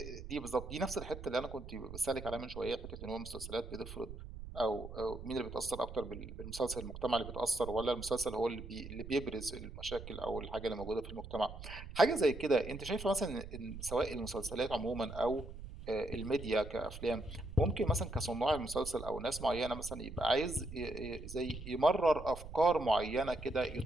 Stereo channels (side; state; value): right; noise; rumble, 11 dB below the sound